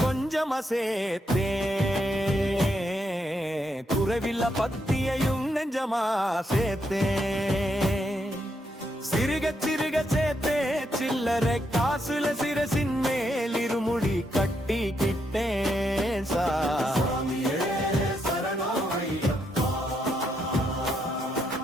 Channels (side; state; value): both; normal; correlation 0.79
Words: கொஞ்சமா சேர்த்தேன், குறைவில்ல பத்தியையும் நெஞ்சமா சேர்த்தேன். சிறுக சிறுக சேர்த்தே சில்லறை காசுல சிரசின் மேல் இருமுடி கட்டிக்கிட்டேன் சாமி.